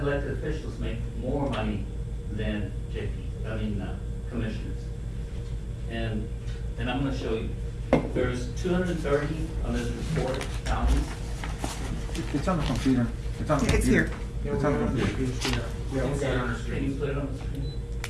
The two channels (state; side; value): identical; both; correlation 1.00